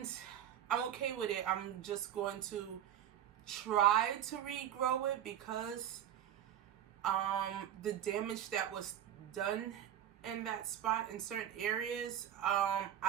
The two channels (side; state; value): left; quieter; 10.5 dB